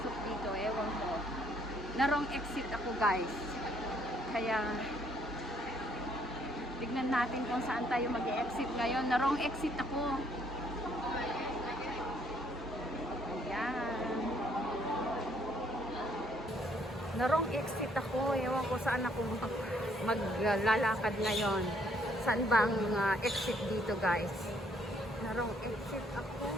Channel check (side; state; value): both; normal; correlation 0.67